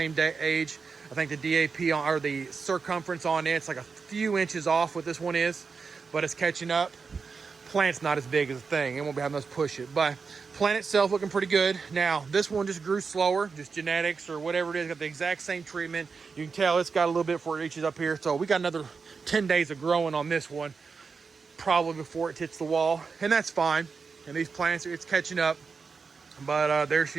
age. I think the DAP or the circumference on it's like a few inches off what this one is, but it's catching up. Plant's not as big as the thing. It won't be having us push it, but plant itself looking pretty good. Now, this one just grew slower, just genetics or whatever it is. Got the exact same treatment. You can tell it's got a little bit before it reaches up here. So we got another 10 days of growing on this one, probably before it hits the wall, and that's fine. And these plants, it's catching up. But there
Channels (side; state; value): left; quieter; 5.1 dB